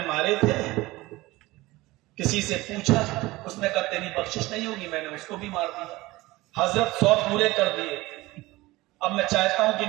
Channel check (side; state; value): left; quieter; 19.7 dB